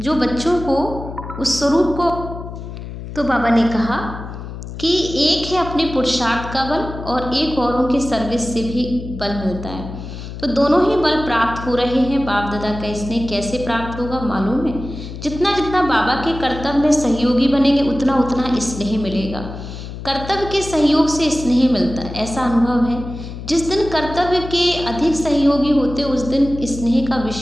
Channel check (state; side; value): noise; left; hum, 10 dB below the sound